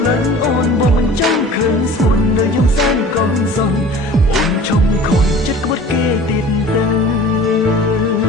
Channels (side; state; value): both; normal; correlation 0.43